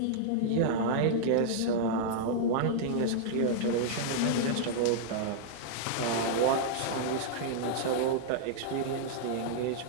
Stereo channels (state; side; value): different; both; correlation -0.02